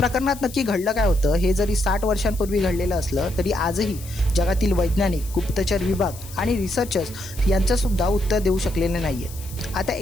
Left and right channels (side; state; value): left; noise; hiss, 17 dB below the sound